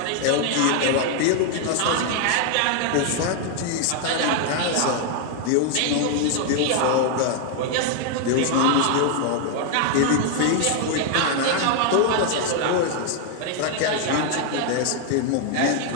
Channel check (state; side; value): different; both; correlation 0.00